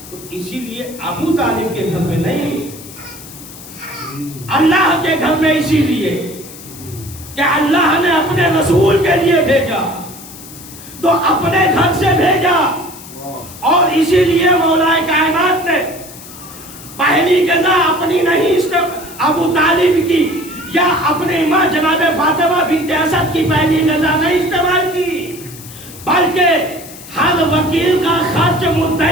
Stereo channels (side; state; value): left; noise; hiss, 16 dB below the sound